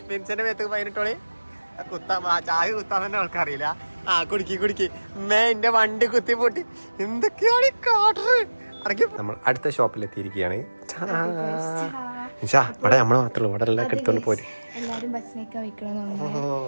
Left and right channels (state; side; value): inverted; both; correlation -1.00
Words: മിൻസിന്റെ മേത്ത് ഫൈൻ ഇട്ടോളി. ചായ കുത്താൻ തന്നെ ആൾക്കറിയില്ല. കുടിക്ക് എന്റെ വണ്ടി കുത്തി പൊട്ടി. എന്തൊക്കെയാണ് കാട്ടറ്. നമ്മൾ അടുത്ത ഷോപ്പിൽ എത്തിയിരിക്കുകയാണ്. ഇവിടെ നമ്മള് മാത്രമേ ഇവിടെ എല്ലാം എടുത്തോണ്ട് പോരും.